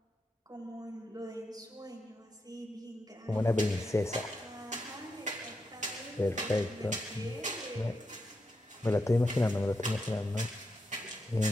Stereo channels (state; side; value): normal; both; correlation 0.84